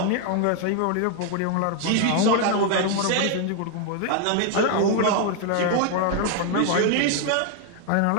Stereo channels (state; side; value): different; both; correlation 0.00